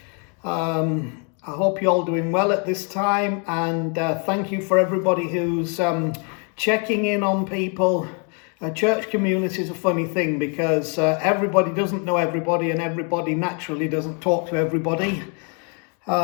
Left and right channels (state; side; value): quieter; right; 37.9 dB